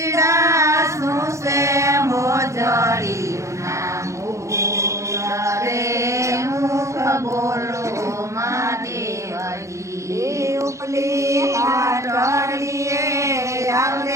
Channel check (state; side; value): late; left; 0.15 ms